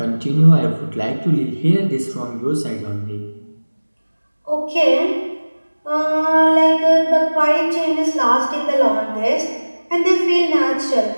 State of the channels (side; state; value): both; inverted; correlation -1.00